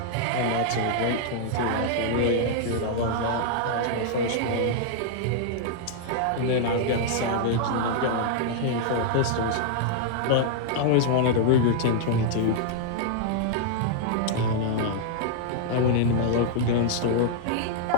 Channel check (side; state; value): both; different; correlation -0.01